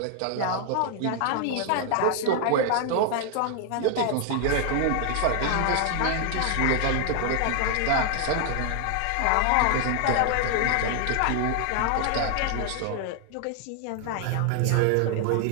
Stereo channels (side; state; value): both; different; correlation 0.00